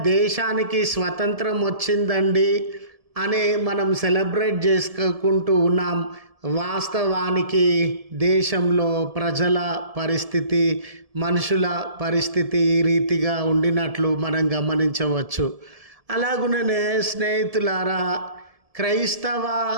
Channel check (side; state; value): left; late; 1.7 ms